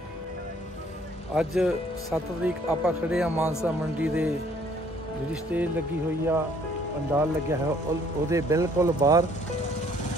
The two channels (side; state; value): both; normal; correlation 0.61